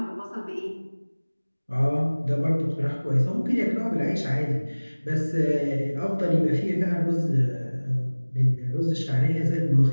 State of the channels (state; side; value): inverted; both; correlation -1.00